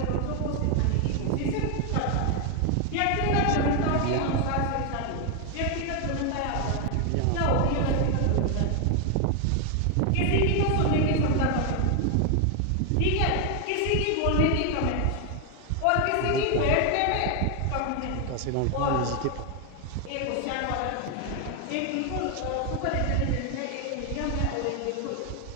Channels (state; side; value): different; both; correlation 0.01